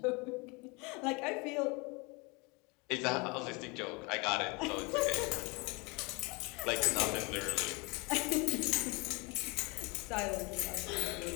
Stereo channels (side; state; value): right; quieter; 28.4 dB